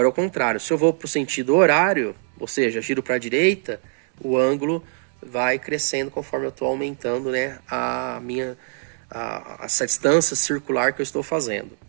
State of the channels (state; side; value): silent; left; 64 dB below the other